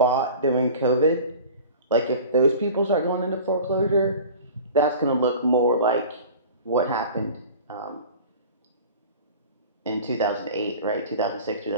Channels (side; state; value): both; inverted; correlation -0.40